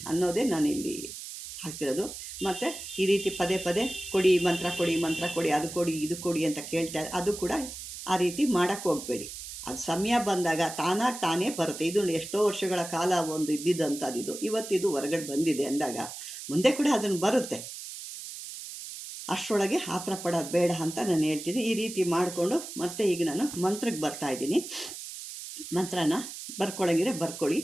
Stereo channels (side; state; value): right; noise; hiss, 10 dB below the sound